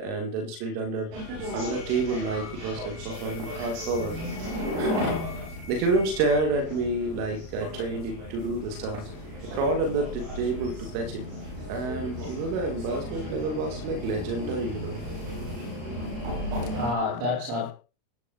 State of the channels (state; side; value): late; left; 36 ms